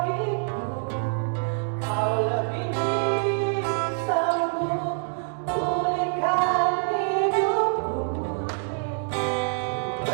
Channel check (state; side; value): silent; left; 61 dB below the other